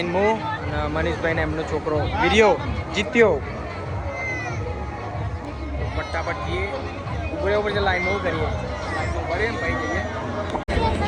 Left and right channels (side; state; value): both; identical; correlation 1.00